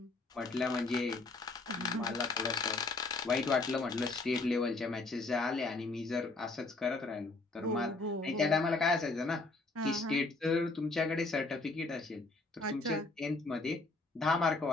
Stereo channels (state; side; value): quieter; right; 3.4 dB